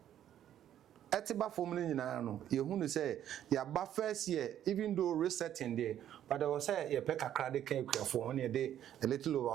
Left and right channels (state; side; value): quieter; left; 10.9 dB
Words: etiba from ni nyina no ye hu no say ya ba first year even though resetting there but there was say ye pe kakra de kan ekuafo on ye de a little